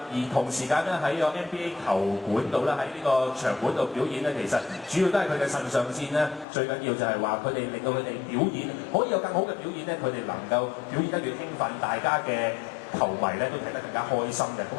而同時間咧喺個 NBA 球館度咧，喺呢個場館度表演咧，其實主要都係佢嘅腎上腺咧，最緊要就係話佢哋令到佢哋表演可以有更好嘅表演咧，佢哋能夠表演得越興奮，大家嘅球迷咧都睇得更加開心嘅。咁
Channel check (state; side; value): drops out; right; at 6.5 s